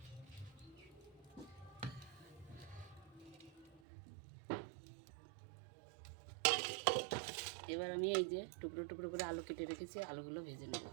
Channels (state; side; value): drops out; left; at 3.8 s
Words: এবার আমি এই যে টুকরো টুকরো করে আলু কেটে রেখেছি, আলুগুলো ভেজে নেব।